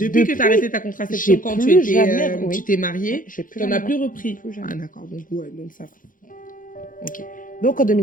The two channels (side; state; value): right; late; 0.39 ms